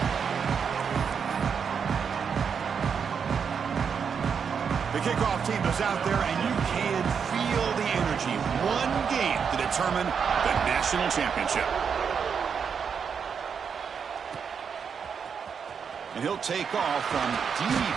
The kickoff team is out there, and you can feel the energy. One game to determine the national championship. And he'll take off from deep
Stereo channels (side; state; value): left; quieter; 6.7 dB